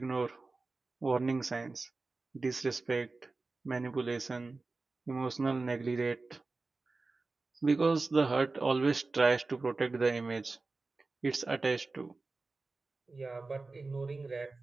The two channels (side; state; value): left; quieter; 3.7 dB